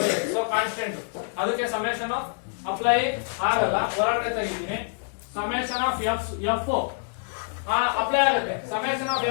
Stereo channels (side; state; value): right; silent; digital silence